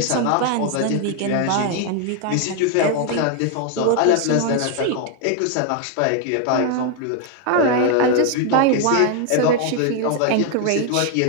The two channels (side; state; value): both; different; correlation 0.01